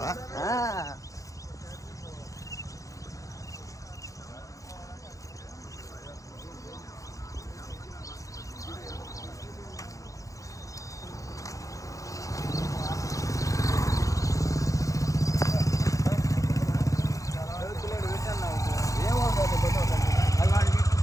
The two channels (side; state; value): right; late; 0.16 ms